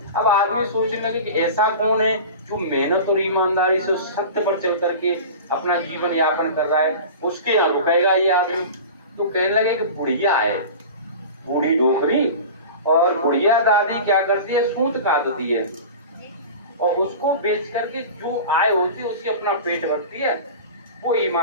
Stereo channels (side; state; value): both; inverted; correlation -0.34